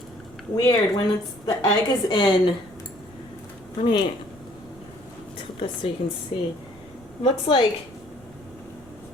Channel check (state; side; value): noise; right; rumble, 23 dB below the sound